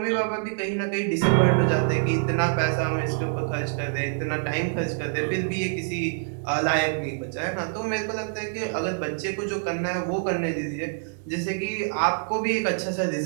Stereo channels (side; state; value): left; silent; digital silence